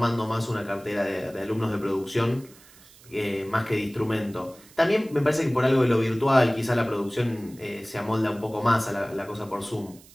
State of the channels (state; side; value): noise; right; hiss, 24 dB below the sound